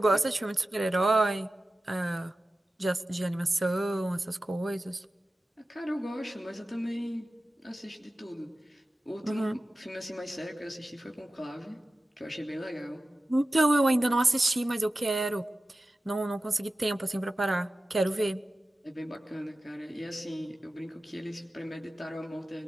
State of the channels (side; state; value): both; normal; correlation 0.95